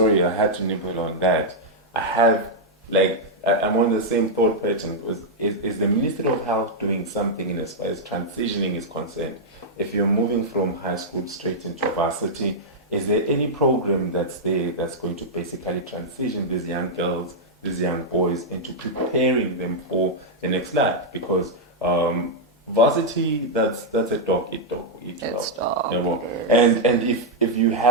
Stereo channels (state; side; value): normal; both; correlation -0.05